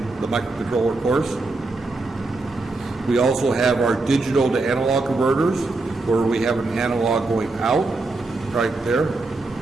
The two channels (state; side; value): quieter; left; 3.3 dB